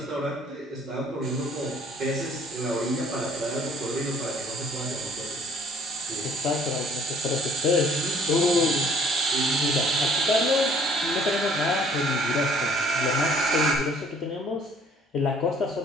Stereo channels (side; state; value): both; normal; correlation 0.57